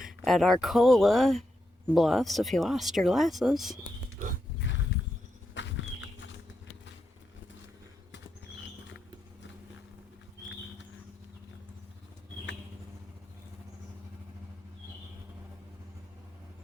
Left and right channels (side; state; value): both; normal; correlation 0.84